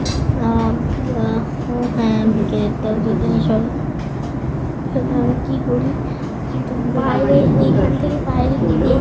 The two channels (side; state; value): both; identical; correlation 1.00